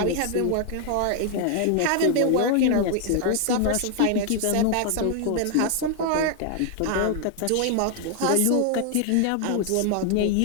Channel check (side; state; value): both; different; correlation 0.00